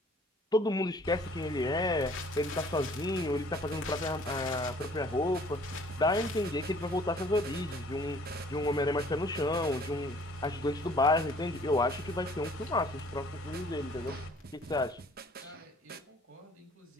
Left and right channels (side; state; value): both; normal; correlation 0.55